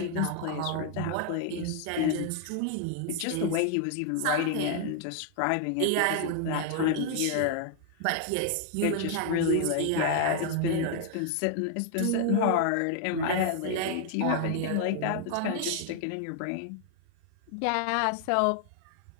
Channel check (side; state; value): both; different; correlation 0.00